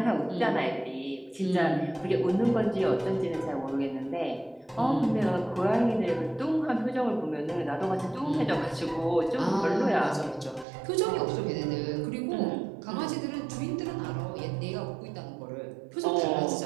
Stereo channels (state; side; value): drops out; left; at 10.7 s